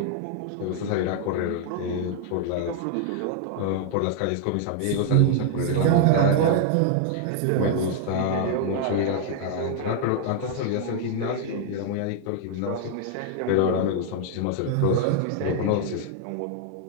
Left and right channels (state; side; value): different; both; correlation 0.00